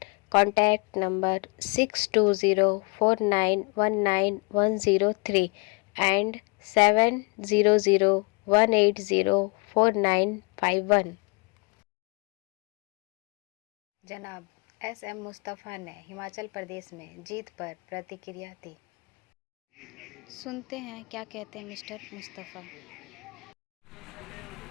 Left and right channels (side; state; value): right; quieter; 30.5 dB